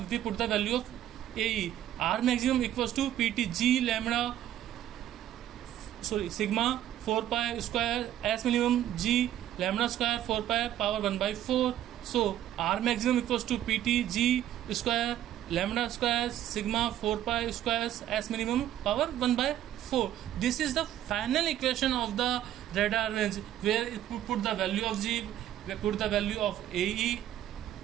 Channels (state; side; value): quieter; left; 11.8 dB